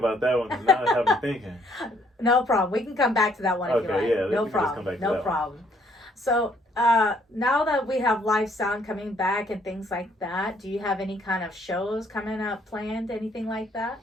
that one because now I have me thinking. No problem. We can come back to that one if you like. Yeah, no problem. No problem. So now that we have live sound coming back and things like that, do you have any kind of shows coming up planned? Anything like that?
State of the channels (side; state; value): both; normal; correlation 0.66